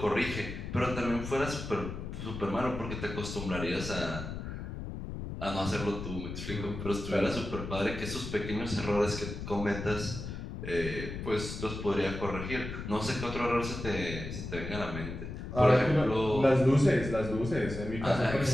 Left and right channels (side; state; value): left; noise; rumble, 7 dB below the sound